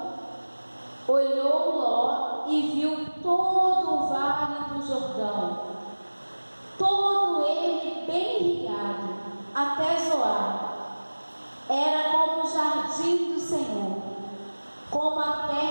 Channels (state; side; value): inverted; both; correlation -1.00